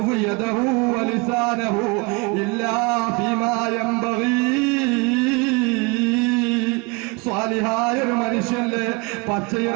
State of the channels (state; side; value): quieter; left; 28.1 dB